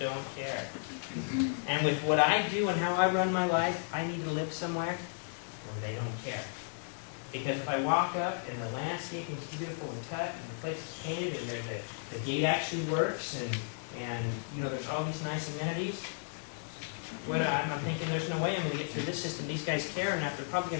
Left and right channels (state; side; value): silent; right; 55 dB below the other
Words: care. And with what I do and how I run my life, I need to live somewhere where they don't care. Because if I walk up and the landscaping is beautiful and cut and the place is painted and the gate actually works and there's all these nice amenities, I'm thinking there's no way I'm going to get through this system. These guys care enough. They're probably